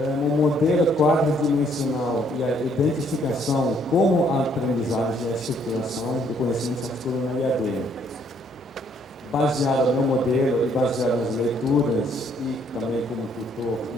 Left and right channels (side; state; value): both; normal; correlation 0.66